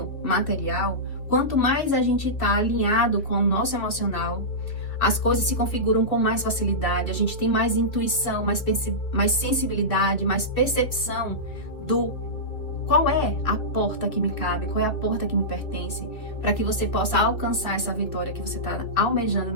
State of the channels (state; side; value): late; right; 2.2 ms